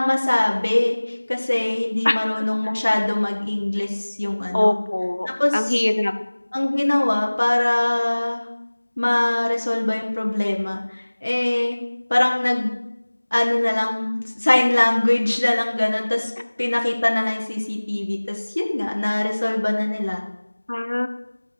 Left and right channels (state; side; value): inverted; both; correlation -1.00